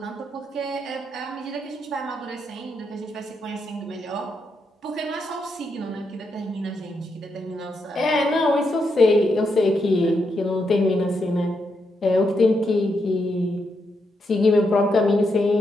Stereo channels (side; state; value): both; normal; correlation 0.81